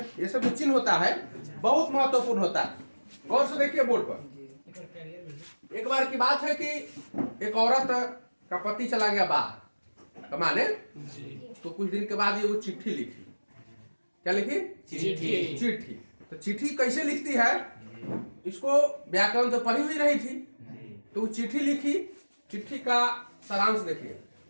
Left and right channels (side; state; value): both; inverted; correlation -1.00